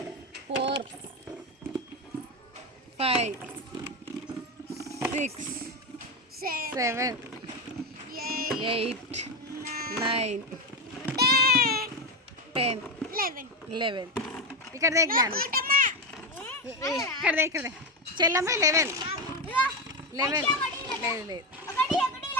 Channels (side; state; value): both; normal; correlation 0.13